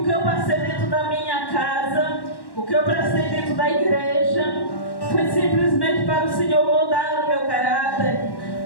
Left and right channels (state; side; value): late; right; 1.1 ms